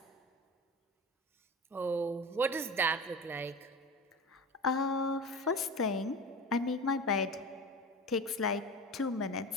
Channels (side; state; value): both; normal; correlation 0.31